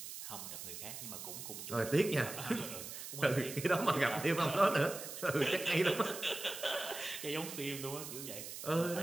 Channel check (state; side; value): noise; right; hiss, 9 dB below the sound